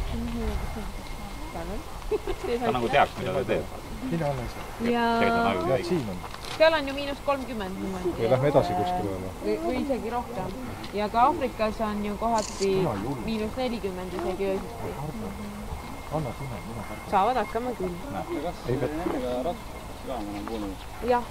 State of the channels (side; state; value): both; identical; correlation 1.00